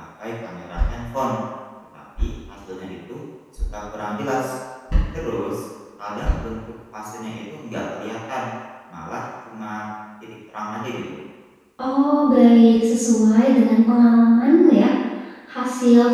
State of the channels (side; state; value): both; identical; correlation 1.00